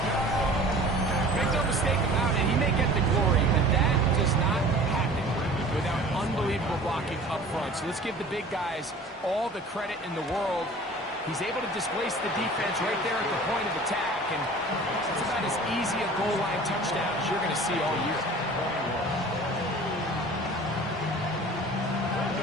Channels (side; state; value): both; normal; correlation 0.44